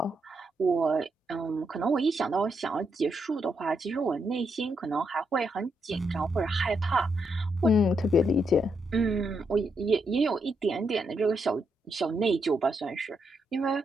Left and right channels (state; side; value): normal; both; correlation 0.80